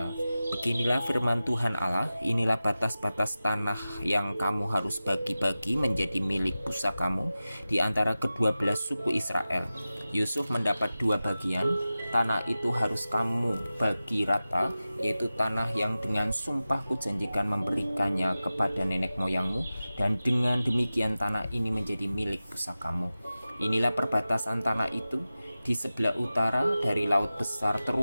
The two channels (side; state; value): both; inverted; correlation -0.95